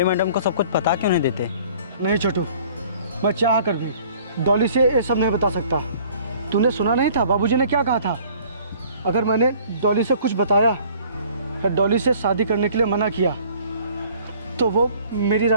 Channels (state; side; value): inverted; both; correlation -0.54